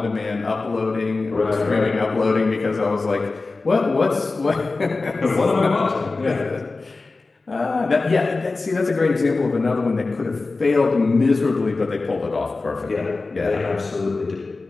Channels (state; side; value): quieter; right; 3.7 dB